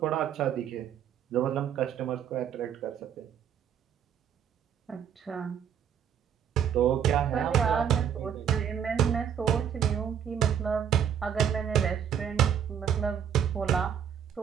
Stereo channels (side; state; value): left; quieter; 8.6 dB